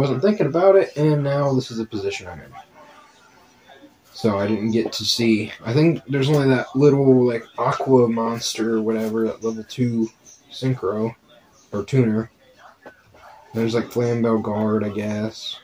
thinking about it, and now this is the position I'm in. So I didn't get to see. I think there's only that little, like, aqua monster or whatever, that level 2 synchro, or tuner. There's, like, Flambeau Guard, I guess.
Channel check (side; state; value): both; identical; correlation 1.00